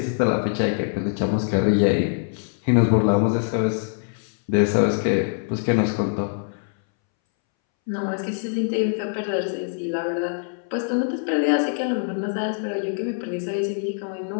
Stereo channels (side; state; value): right; silent; 62 dB below the other